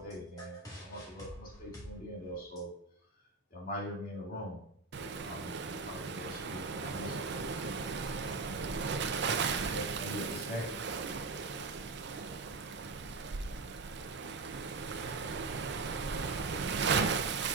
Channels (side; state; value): left; quieter; 4.0 dB